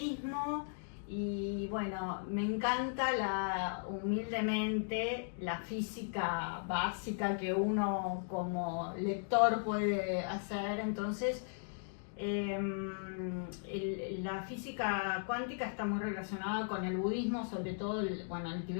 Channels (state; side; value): silent; right; digital silence